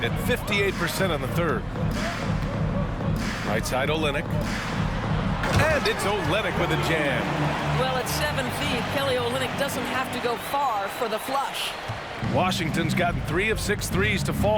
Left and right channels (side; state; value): both; identical; correlation 1.00